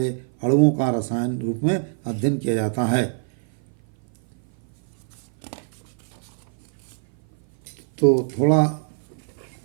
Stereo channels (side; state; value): left; silent; 56 dB below the other